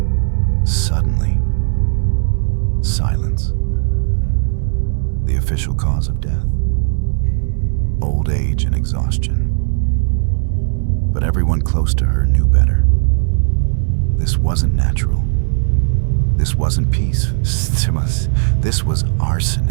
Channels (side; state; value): left; silent; 65 dB below the other